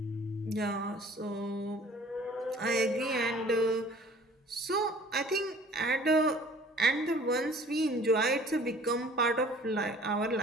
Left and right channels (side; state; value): both; normal; correlation 0.50